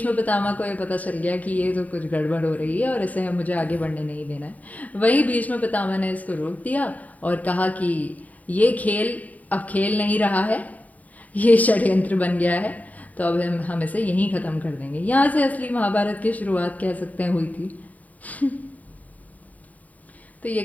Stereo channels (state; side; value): late; right; 0.072 ms